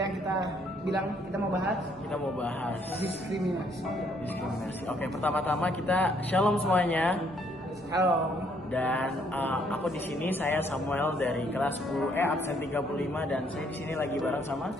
yang kita bilang, kita mau bahas diskriminasi. Oke, pertama-tama kita shalom semuanya. Halo. Dan aku di sini, saya Samuel dari kelas 10E absen 35 dan saya di sini lagi bareng sama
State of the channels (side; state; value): both; normal; correlation 0.67